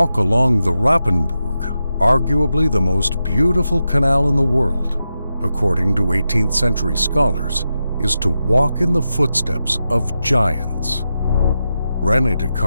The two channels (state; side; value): inverted; both; correlation -0.89